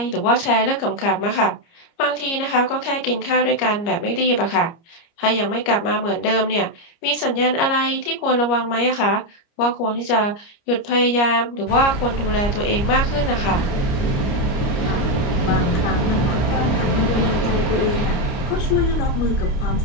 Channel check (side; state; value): right; late; 29 ms